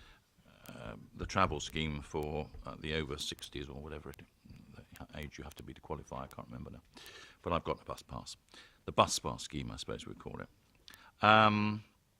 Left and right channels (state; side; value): identical; both; correlation 1.00